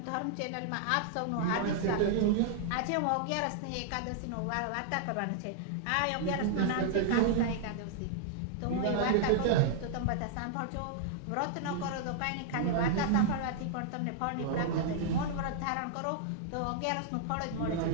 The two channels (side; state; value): both; different; correlation -0.01